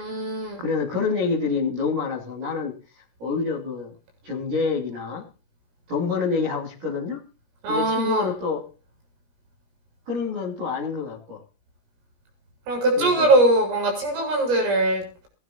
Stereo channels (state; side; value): late; left; 17 ms